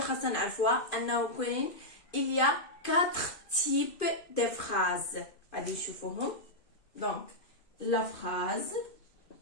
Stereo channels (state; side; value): late; right; 2.5 ms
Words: نعرفوها انه كاين il y a 4 types de phrases. غادي نشوفوهم. دونك لا phrase